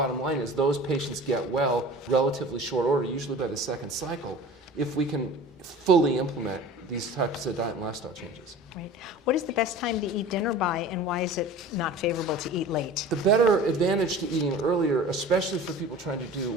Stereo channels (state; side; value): normal; both; correlation 0.40